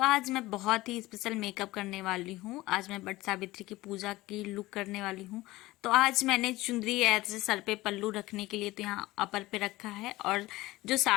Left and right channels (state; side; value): quieter; right; 18.6 dB